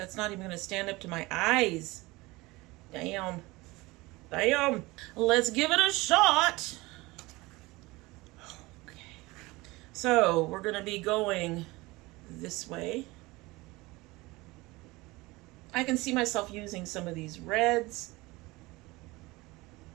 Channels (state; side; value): quieter; left; 21.8 dB